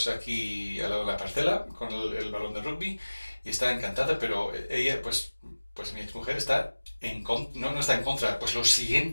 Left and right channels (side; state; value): both; inverted; correlation -1.00